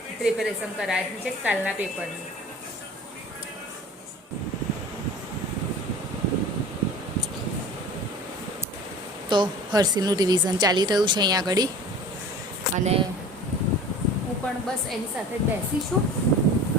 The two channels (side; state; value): both; normal; correlation 0.40